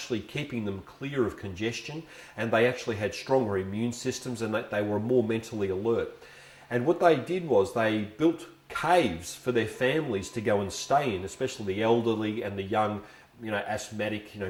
keeping them clear of congestion, and they actually had stronger immune systems and that they were more mentally alert. And what they did was they built caves for their families to go and stay in, especially the elderly and the young, asthmatic,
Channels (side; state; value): both; identical; correlation 1.00